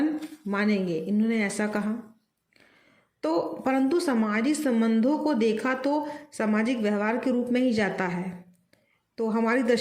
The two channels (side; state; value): both; identical; correlation 1.00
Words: मानेंगे। इन्होंने ऐसा कहा। तो परंतु सामाजिक संबंधों को देखा तो सामाजिक व्यवहार के रूप में ही जाता है। तो हमारी